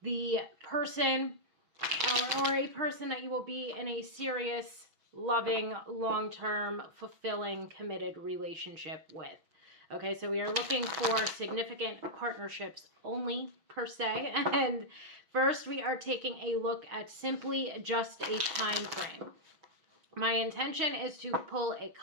the person or a person that you will be in a serious, loving, long-term, fulfilling, committed relationship with. Okay, so we are looking for significant partnerships only, per se. And first, we are taking a look at simply just a time frame. My intention is to pull a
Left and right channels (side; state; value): left; late; 6.1 ms